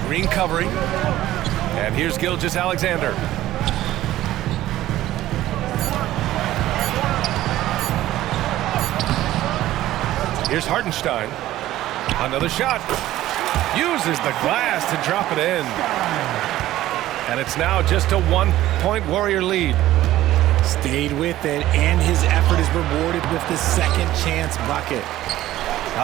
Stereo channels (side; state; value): left; quieter; 14.7 dB